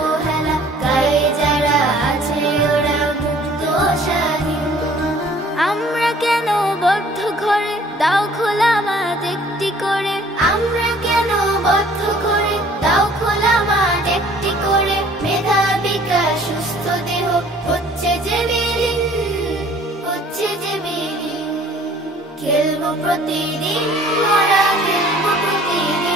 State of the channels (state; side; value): normal; both; correlation 0.54